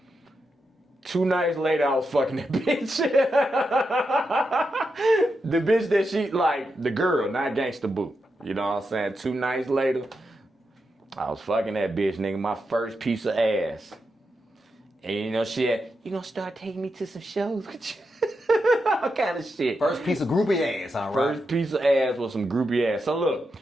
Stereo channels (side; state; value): both; normal; correlation 0.86